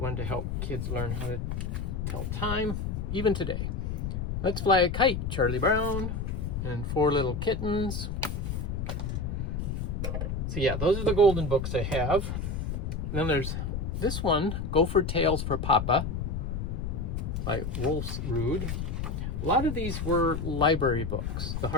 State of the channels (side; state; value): left; noise; rumble, 3 dB below the sound